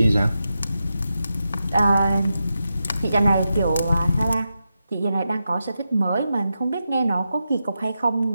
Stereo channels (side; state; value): both; inverted; correlation -0.88